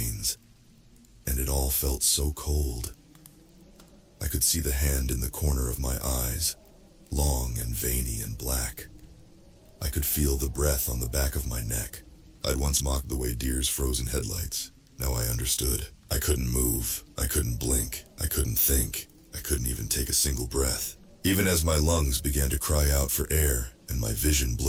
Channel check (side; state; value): both; identical; correlation 1.00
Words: and it all felt so cold. I could see the hand in the corner of my eyes, long and veiny and black. I could feel the breath on the back of my neck. I'd once mocked the way deers froze in headlights. Now I understood. I couldn't move. I couldn't blink. I couldn't couldn't think. I couldn't even take a single breath. Even as my lungs began to cry out for air, and my vision